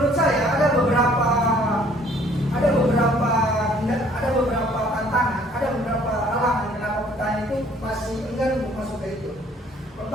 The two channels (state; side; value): normal; both; correlation 0.59